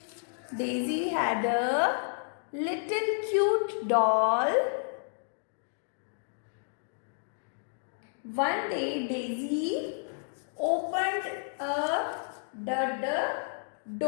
Daisy had a little cute doll. One day Daisy opened the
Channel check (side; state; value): right; silent; digital silence